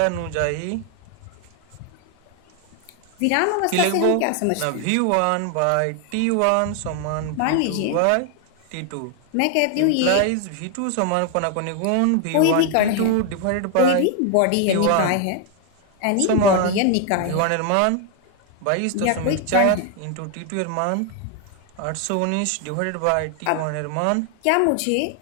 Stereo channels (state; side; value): different; both; correlation 0.00